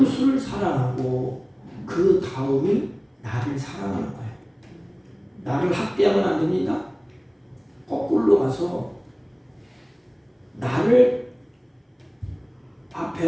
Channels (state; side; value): identical; both; correlation 1.00